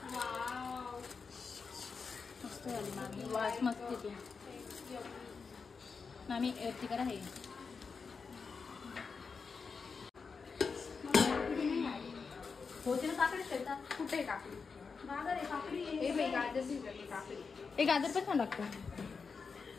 मस्त झाली मामी. वास मस्त येतो मामी. ती करा हे होते ना काकडी खेळतात. कुठे काकडी? गाजर आहे, काकडी आहे. हे बाई गाजर भिजवली काकडी. हे गाजर पण छान लागतं.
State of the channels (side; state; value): right; quieter; 5.1 dB